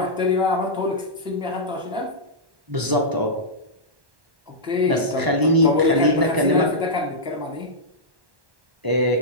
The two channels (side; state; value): left; late; 1.1 ms